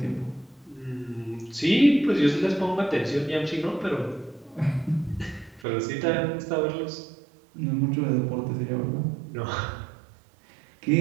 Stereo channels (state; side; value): drops out; left; at 5.7 s